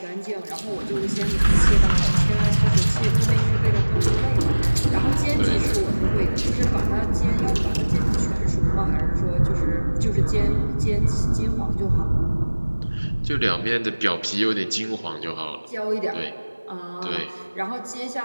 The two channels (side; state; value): both; inverted; correlation -1.00